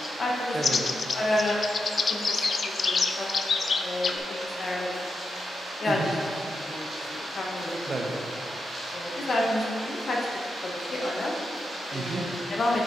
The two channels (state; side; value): normal; both; correlation 0.86